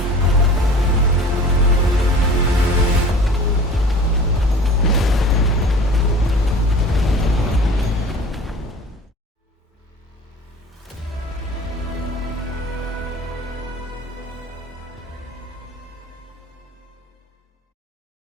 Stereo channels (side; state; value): both; normal; correlation 0.43